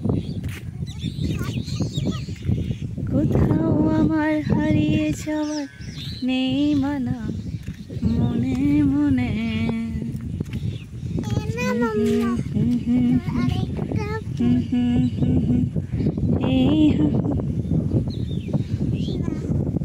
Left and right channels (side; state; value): both; identical; correlation 1.00